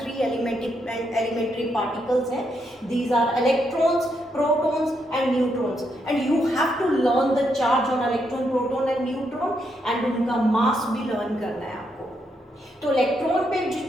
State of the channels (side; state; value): both; normal; correlation 0.79